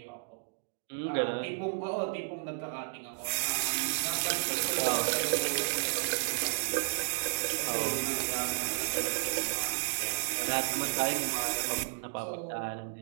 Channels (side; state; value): left; silent; digital silence